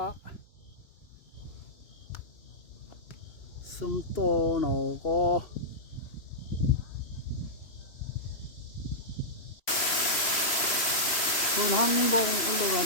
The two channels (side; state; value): right; late; 2.9 ms